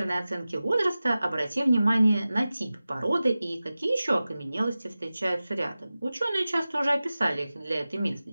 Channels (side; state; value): both; inverted; correlation -0.96